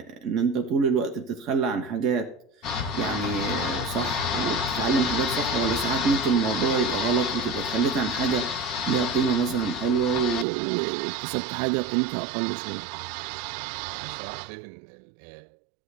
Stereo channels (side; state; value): left; drops out; at 10.5 s